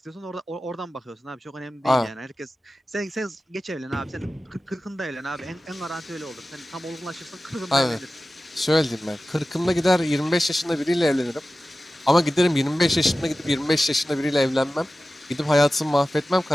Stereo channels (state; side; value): normal; both; correlation 0.95